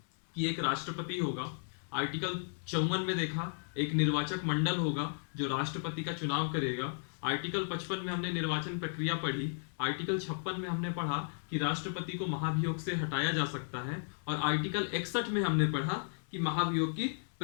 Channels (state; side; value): silent; right; digital silence